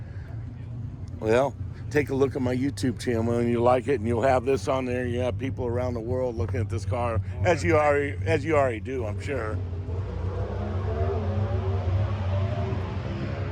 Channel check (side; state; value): both; identical; correlation 1.00